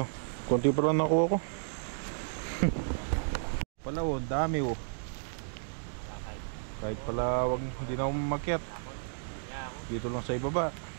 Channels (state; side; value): silent; left; digital silence